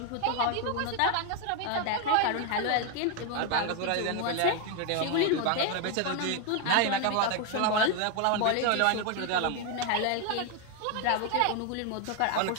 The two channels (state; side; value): different; both; correlation 0.01